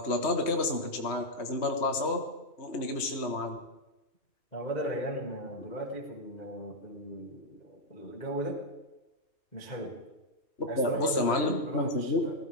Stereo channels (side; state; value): right; late; 3.1 ms